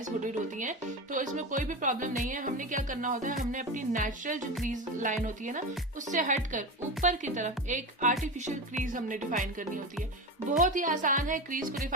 हुडीड होती हैं, तो इसमें कोई भी प्रॉब्लम नहीं है। हमने क्या करना होता है, हमने अपनी नेचुरल जो क्रीज लाइन होती है ना, उससे हटकर ऊपर की तरफ एक आर्टिफिशियल क्रीज हमने डिफाइन करनी होती है। बहुत ही आसान है, क्रीज को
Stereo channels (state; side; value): normal; both; correlation 0.23